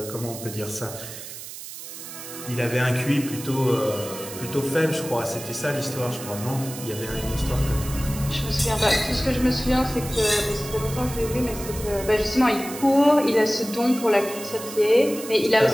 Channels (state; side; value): noise; right; hiss, 11 dB below the sound